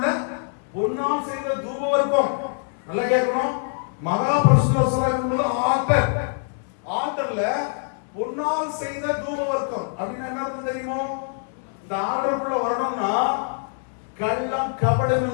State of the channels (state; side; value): silent; right; 63 dB below the other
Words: பொன்னால் செய்த தூபவர்க்கம். நல்லா கேட்கணும். மகா பரிசுத்த ஸ்தலத்துக்குள்ள ஆல்டர்ல பொன்னால் செய்த தூபவர்க்கம் அப்படின்னு என்ன அர்த்தம் தெரியுமோ? இந்த ஆல்டருக்குள்ள வரணும்னா கள்ளம் கபடம்